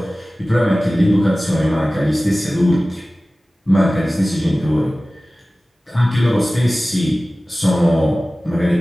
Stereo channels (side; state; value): both; normal; correlation 0.97